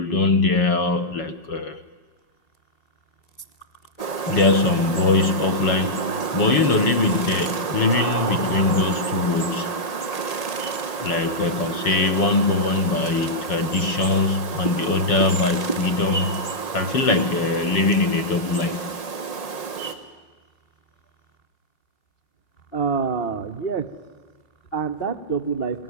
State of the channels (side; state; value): right; late; 5.6 ms